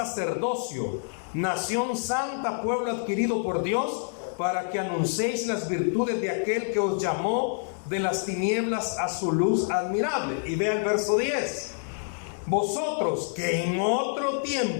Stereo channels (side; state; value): right; silent; digital silence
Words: nación santa, pueblo adquirido por Dios, para que anunciéis las virtudes de aquel que os llamó de las tinieblas a su luz admirable. Y vea el verso 10. Vosotros que en otro